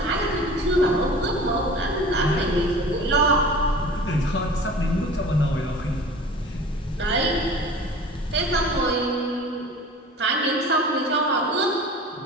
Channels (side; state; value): both; normal; correlation 0.40